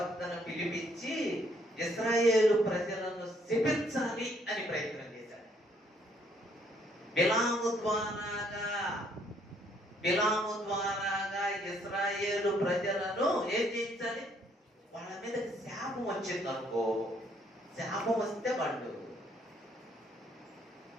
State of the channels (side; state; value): both; normal; correlation 0.67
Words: పిలిపించి ఇశ్రాయేలు ప్రజలను శపించాలి అని ప్రయత్నం చేశాడు. బిలాము ద్వారాగా ఇశ్రాయేలు ప్రజలను ఏం చేయించాలి? వాళ్ళ మీద శాపం వచ్చింది అనుకో, శాపం వస్తే వాళ్ళు,